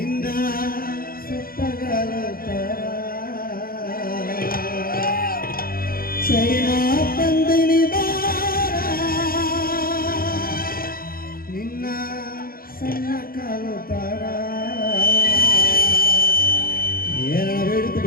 ಸುತ್ತಗಲ ಚೈನಾ ತಂದಿನಿ ಬಾರ ನಿನ್ನ ಸಣ್ಣ ಕಾಲು ತಾರ ಏನ ಬೇಡಿತು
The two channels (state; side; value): late; right; 0.42 ms